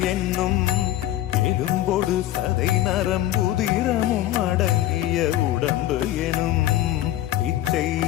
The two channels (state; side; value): quieter; right; 14.0 dB